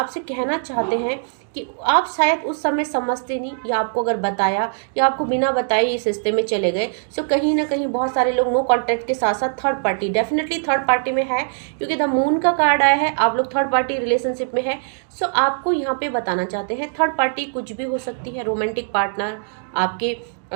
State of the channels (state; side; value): silent; left; digital silence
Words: कहना चाहते हैं कि आप शायद उस समय समझते नहीं या आपको अगर बताया या आपको बिना बताए इस रिश्ते में चले गए। कहीं ना कहीं बहुत सारे लोग नो कॉन्टेक्ट के साथ साथ third party, definitely third party में है क्योंकि द मून का कार्ड आया है, आप लोग थर्ड पार्टी रिलेशनशिप में है। आपको यहाँ पे बताना चाहते हैं थर्ड पार्टी कुछ भी हो सकती है, रोमांटिक पार्टनर, आपके